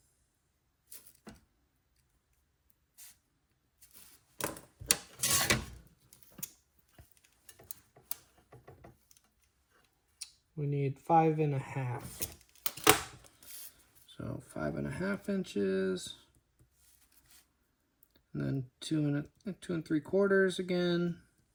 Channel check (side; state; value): both; identical; correlation 1.00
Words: we need 5 1/2. So 5 1/2 inches, and then 2 3/4 again.